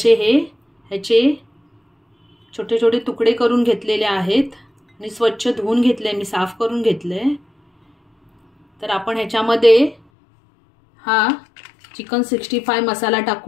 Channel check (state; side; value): drops out; right; at 10.0 s